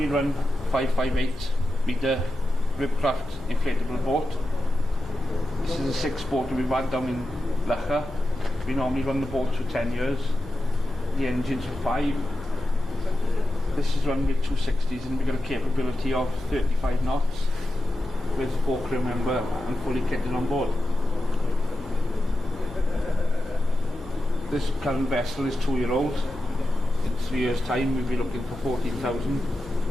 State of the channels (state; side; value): noise; left; hum, 18 dB below the sound